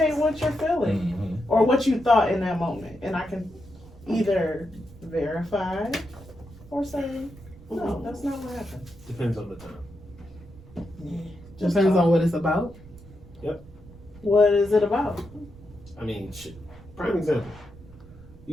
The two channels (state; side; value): noise; right; rumble, 20 dB below the sound